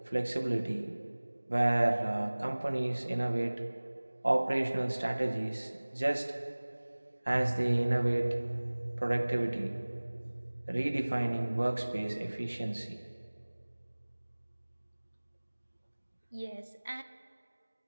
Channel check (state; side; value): inverted; both; correlation -1.00